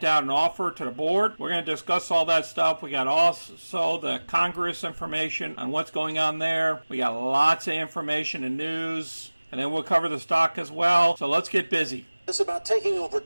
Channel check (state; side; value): inverted; both; correlation -1.00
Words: out an offer to the board. We're going to discuss all that stuff. We got also the Congress information on what's going on there. We got lots of information and news. And then we'll cover the stock as well. So let's get busy. It's about taking over